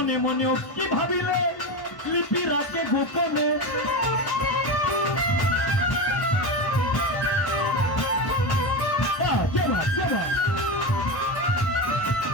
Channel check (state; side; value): late; right; 1.1 ms